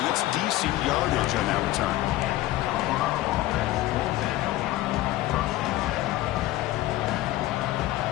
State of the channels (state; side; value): quieter; right; 16.0 dB